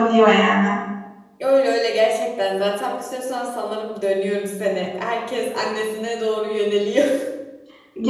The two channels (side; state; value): both; identical; correlation 1.00